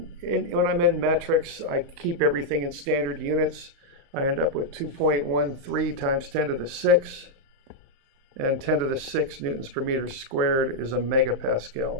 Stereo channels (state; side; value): late; left; 35 ms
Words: when I'm in metrics, I keep everything in standard units. I end up with 2.13 times 10 to the 6. And 10 to the 6 newtons per meter squared is a